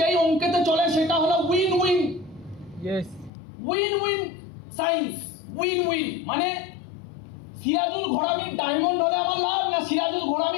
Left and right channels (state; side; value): drops out; right; at 3.3 s